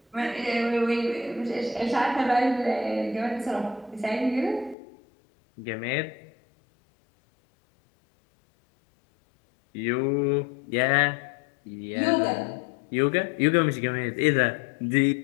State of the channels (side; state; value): right; drops out; at 4.8 s